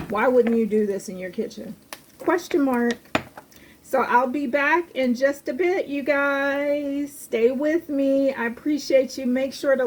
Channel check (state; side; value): identical; both; correlation 1.00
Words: Why wouldn't you do this in your kitchen? Question mark. So I'll be back in just a bit, you guys. Stay with me. I appreciate you. Make sure to